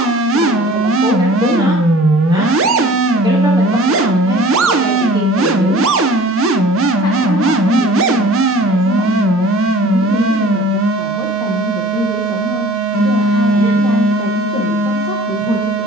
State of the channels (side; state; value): both; normal; correlation 0.47